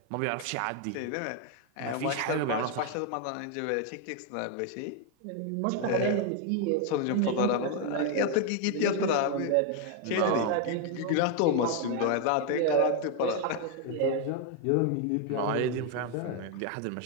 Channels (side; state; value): both; different; correlation 0.01